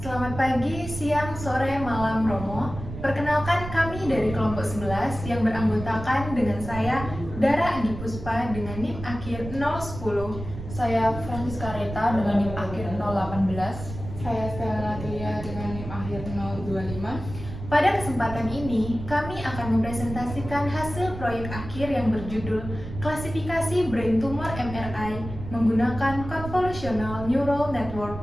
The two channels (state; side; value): noise; right; rumble, 10 dB below the sound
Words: Selamat pagi, siang, sore, malam, Romo. Perkenalkan kami dari kelompok 11 yang beranggotakan dengan saya, Dara Adi Puspa dengan NIM akhir 010. Saya Francisca Reta dengan NIM akhir 018. Saya Stella Natalia dengan NIM akhir 025. Pada kesempatan ini, kami akan mempresentasikan hasil proyek akhir yang berjudul Klasifikasi Brain Tumor MRI menggunakan Convolutional Neural